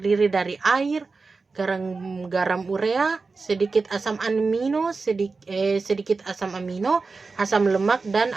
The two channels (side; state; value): left; quieter; 4.2 dB